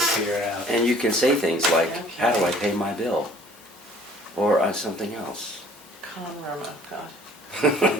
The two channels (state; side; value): normal; both; correlation 0.53